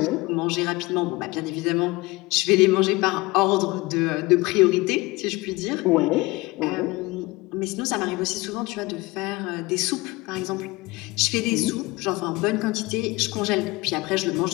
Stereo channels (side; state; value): right; quieter; 22.0 dB